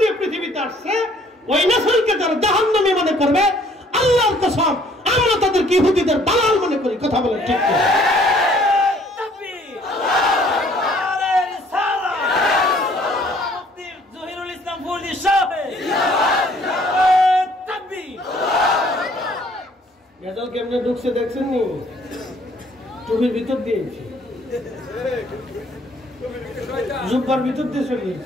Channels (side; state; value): both; normal; correlation 0.60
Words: দিয়ে পৃথিবীতে আসছে ওই নসলকে যারা জাহান্নামী মনে করবে, আল্লাহর কসম আমরা তাদেরকে ইহুদিদের দালাল মনে করি। কথা বলেন ঠিক কি? তাকবীর, আল্লাহু আকবার, রিসালাত, মুফতি জহিরুল ইসলাম ফরিদ সাহেব, জিন্দাবাদ, জিন্দাবাদ, তাকবীর। গেজাল কেমনে ঢুকছে দেখছেন নি? টুপির ভিতর দিয়েছি, জুব্বার ভিতর দিয়ে চলে